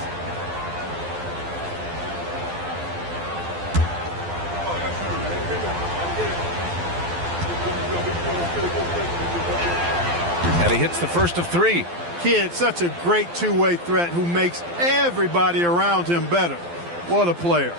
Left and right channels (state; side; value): late; left; 12 ms